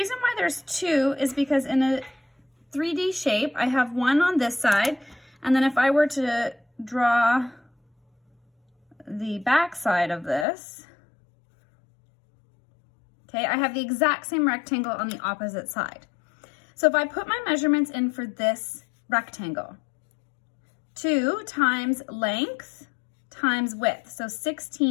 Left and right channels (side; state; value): right; drops out; at 10.5 s